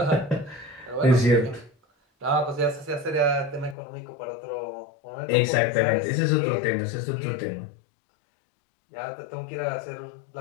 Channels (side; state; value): right; drops out; at 3.8 s